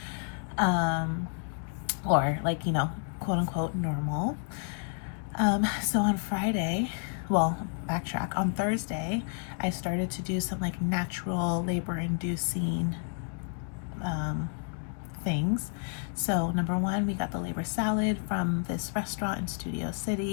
Or like, quote unquote normal. So on Friday, well, backtrack, on Thursday, I started to do some like natural labor inducing things. So number one, we got the labor salad from this restaurant in Studio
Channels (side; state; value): right; silent; 57 dB below the other